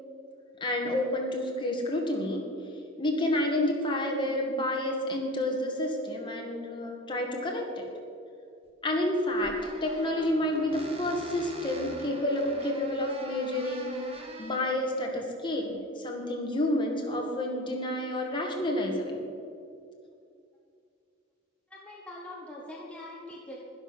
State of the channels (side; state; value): both; normal; correlation 0.34